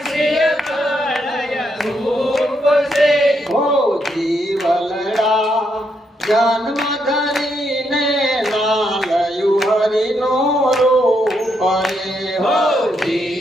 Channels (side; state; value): both; normal; correlation 0.78